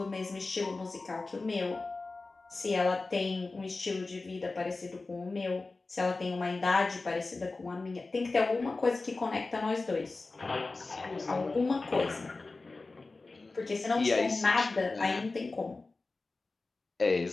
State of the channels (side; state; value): right; quieter; 3.6 dB